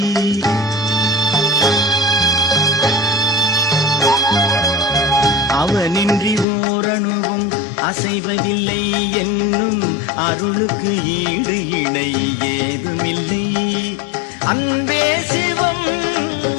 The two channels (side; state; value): right; drops out; at 6.5 s